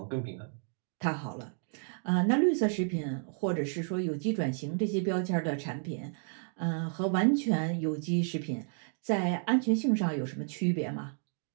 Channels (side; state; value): left; silent; 57 dB below the other